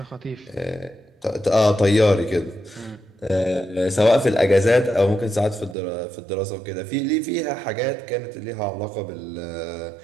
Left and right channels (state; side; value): drops out; left; at 5.8 s